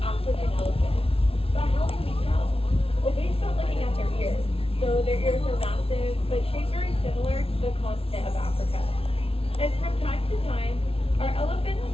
their ears are massive, but shaped very similar to the continent of Africa. And from time to time, our elephants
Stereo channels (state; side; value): late; right; 0.27 ms